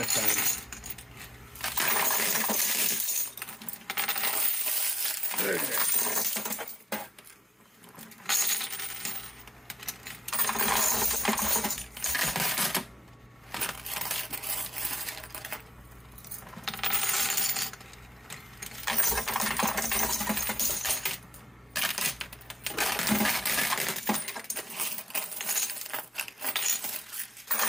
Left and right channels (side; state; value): both; normal; correlation 0.95